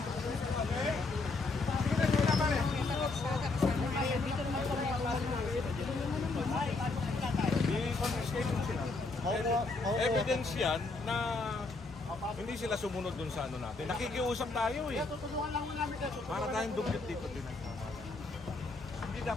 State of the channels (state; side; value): quieter; right; 3.6 dB